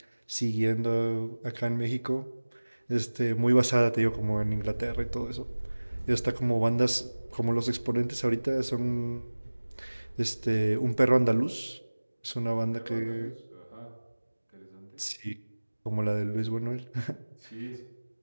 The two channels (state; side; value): inverted; both; correlation -1.00